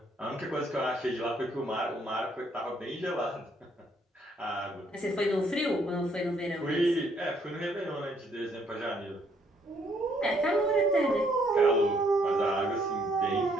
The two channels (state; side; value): normal; both; correlation 0.68